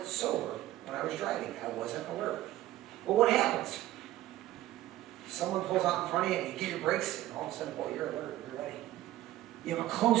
sober when I was driving. I wasn't alert. But what happens? Someone pulls out in front of you and you get your brakes, and all of a sudden, boy, you're alert, you're ready. You have a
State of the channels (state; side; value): quieter; left; 14.9 dB